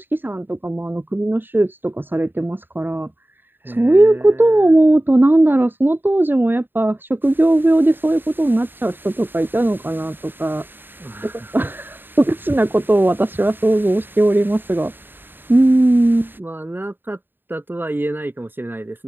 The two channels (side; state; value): left; late; 0.096 ms